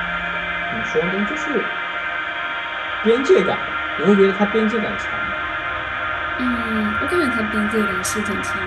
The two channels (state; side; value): identical; both; correlation 1.00